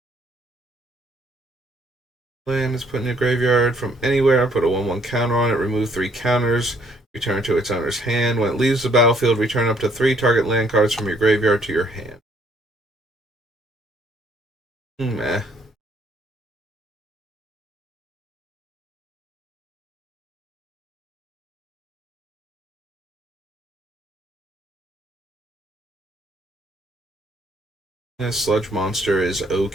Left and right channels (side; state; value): both; normal; correlation 0.66